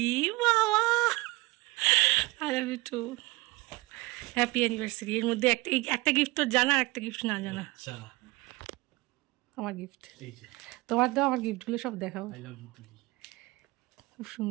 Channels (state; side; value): quieter; left; 22.4 dB